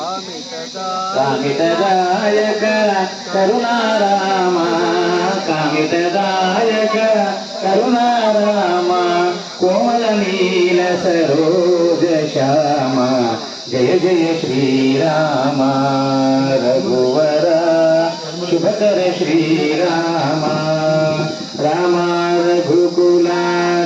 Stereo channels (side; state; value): both; identical; correlation 1.00